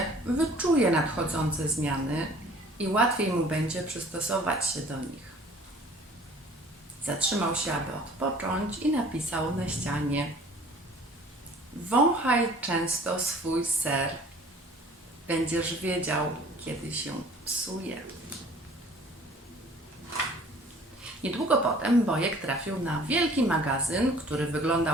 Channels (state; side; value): normal; both; correlation 0.51